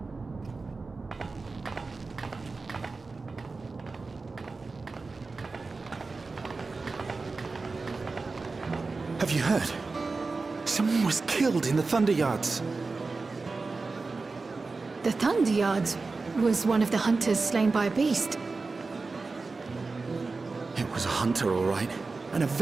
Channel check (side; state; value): left; quieter; 3.9 dB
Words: Have you heard? Someone was killed in the Thunder Yards. The Thunder Yards was one of the hunters slain by a beast. It was a hunter, all right, and a